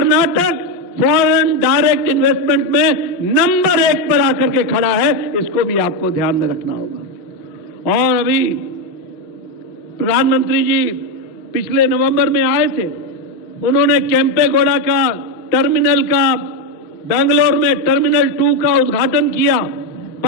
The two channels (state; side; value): late; right; 6.6 ms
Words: फॉरेन डायरेक्ट इन्वेस्टमेंट में नंबर 1 पर आकर के खड़ा है, इसको भी आपको ध्यान में रखना होगा। और अभी प्रधानमंत्री जी पिछले नवंबर में आए थे, उन्होंने केम्पेगौड़ा का टर्मिनल का, बेंगलोर में टर्मिनल 2 का उद्घाटन किया।